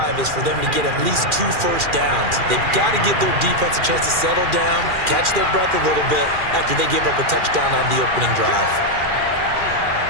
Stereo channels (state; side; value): late; left; 2.4 ms